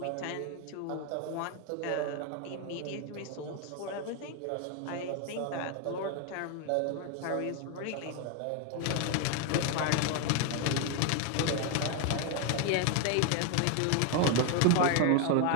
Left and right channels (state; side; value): different; both; correlation 0.01